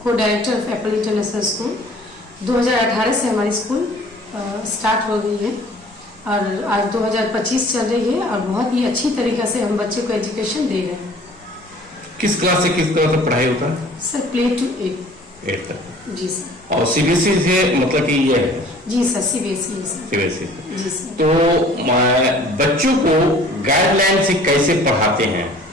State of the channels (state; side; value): normal; both; correlation 0.50